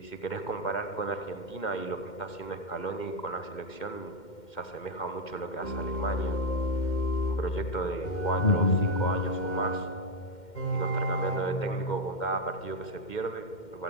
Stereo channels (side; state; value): right; late; 2.1 ms